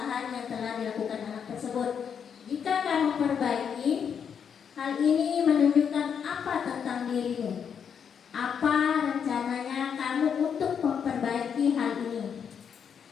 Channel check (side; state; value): right; quieter; 7.4 dB